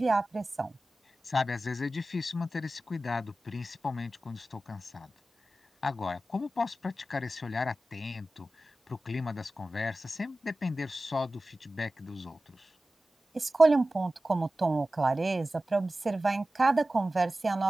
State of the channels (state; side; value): normal; both; correlation 0.95